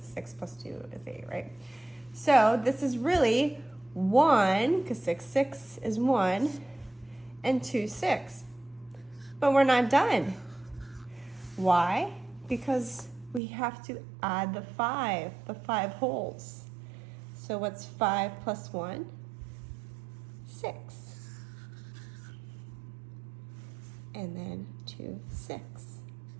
6 plus 2 is 8, right? So this is really 1, because 6/6 is 1, and 2/6. But we're not done. Why? Because we have to add the 5 wholes. So what's 5 plus 1? 6. And then 2/6.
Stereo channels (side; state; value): left; drops out; at 13.4 s